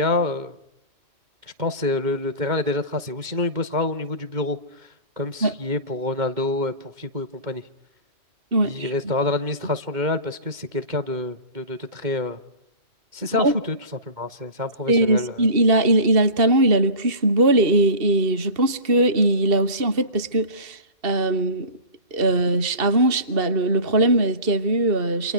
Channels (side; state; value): left; late; 2.7 ms